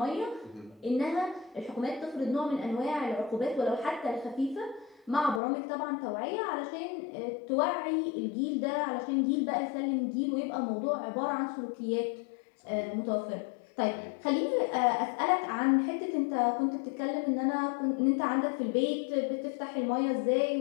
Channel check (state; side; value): drops out; right; at 5.4 s